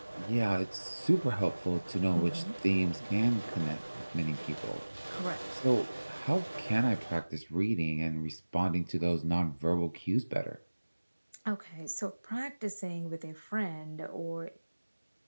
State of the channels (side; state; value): both; inverted; correlation -1.00